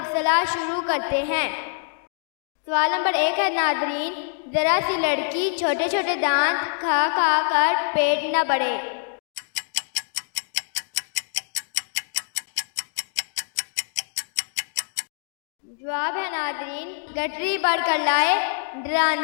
शुरू करते हैं। सवाल नंबर 1 है नाज़रीन, ज़रा सी लड़की छोटे छोटे दांत खा खा कर पेट न बढ़े। जवाब है नाज़रीन, गठरी बढ़ कर लाए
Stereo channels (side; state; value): right; silent; digital silence